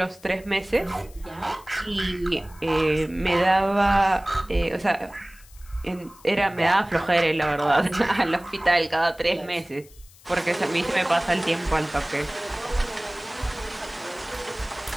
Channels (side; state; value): left; noise; hiss, 25 dB below the sound